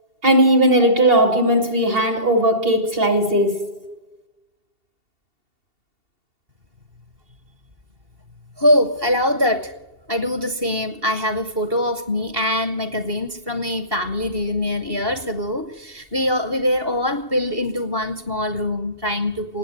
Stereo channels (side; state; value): left; late; 2.7 ms